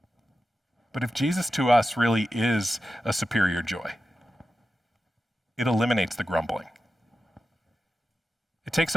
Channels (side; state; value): both; normal; correlation 0.91